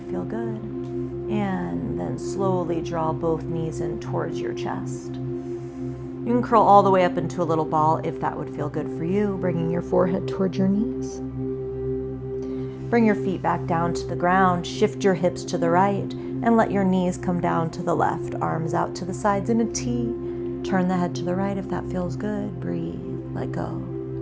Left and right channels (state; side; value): identical; both; correlation 1.00